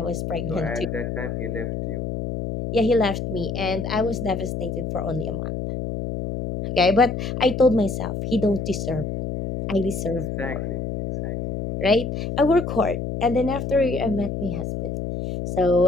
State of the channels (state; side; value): noise; left; hum, 4 dB below the sound